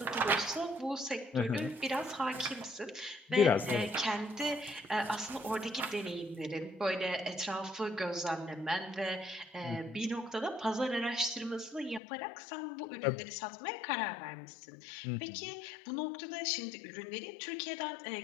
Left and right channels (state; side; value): drops out; right; at 12.0 s